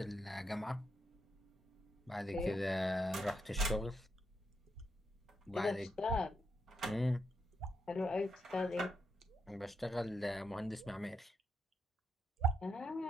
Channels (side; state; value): both; normal; correlation 0.81